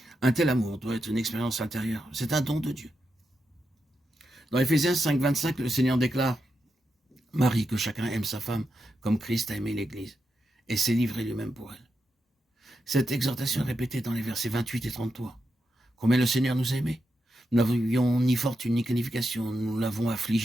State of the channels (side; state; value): both; normal; correlation 0.86